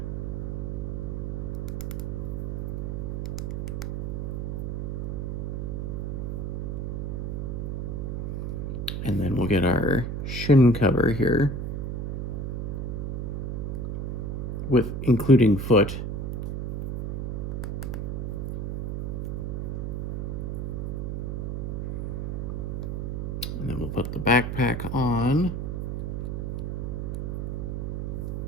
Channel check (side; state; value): right; noise; hum, 2 dB below the sound